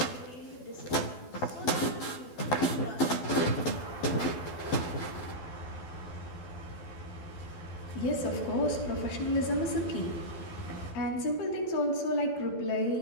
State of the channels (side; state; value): right; late; 12 ms